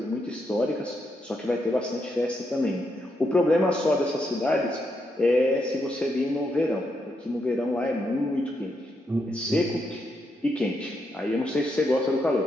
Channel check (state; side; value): normal; both; correlation 0.80